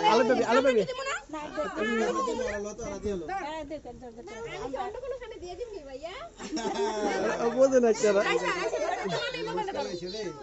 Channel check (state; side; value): identical; both; correlation 1.00